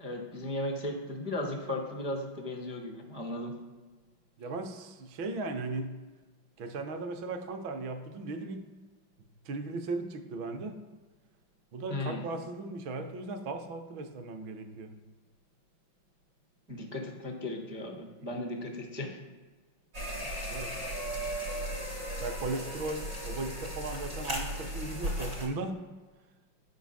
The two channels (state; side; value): late; left; 5.5 ms